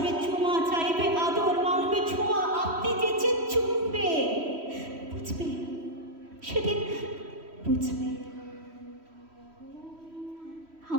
চুমা, চাইবে আদর, মাংবে ছোঁয়া, আপনি যেচে চুমবে, বুঝবে সেদিন বুঝবে।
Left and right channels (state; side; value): late; left; 3.1 ms